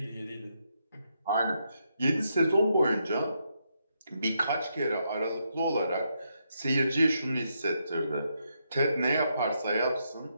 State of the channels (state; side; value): inverted; both; correlation -0.80